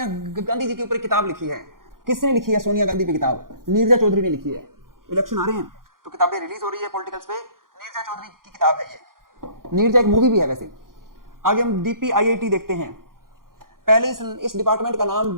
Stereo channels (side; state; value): left; late; 0.91 ms